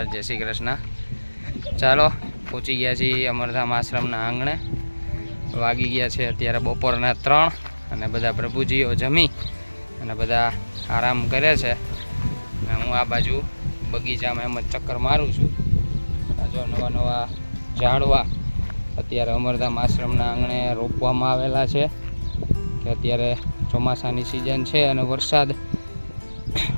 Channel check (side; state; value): both; inverted; correlation -1.00